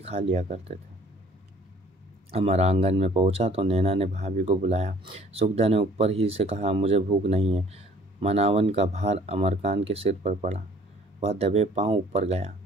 लिया करते थे। अमर आंगन में पहुंचा तो नैना ने भाभी को बुलाया। सुखदा ने ऊपर ही से कहा, मुझे भूख नहीं है। मनावन का भार अमरकान के सिर पर पड़ा। वह दबे पांव ऊपर गया।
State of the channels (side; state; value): both; normal; correlation 0.55